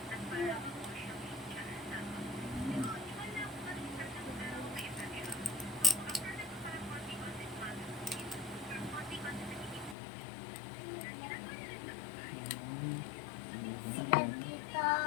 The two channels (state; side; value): drops out; right; at 10.0 s